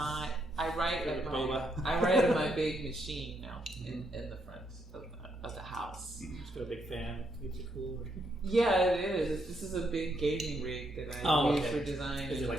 I write at Boba. I write at my big machine now in the front of the house. Just got a big fan. Keeps it cool. Yeah, it is. This is a big gauging rig that I use for design. Is it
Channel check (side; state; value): both; normal; correlation 0.77